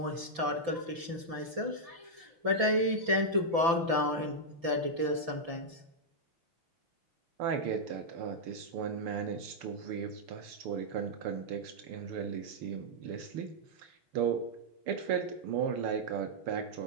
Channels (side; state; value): left; late; 5.9 ms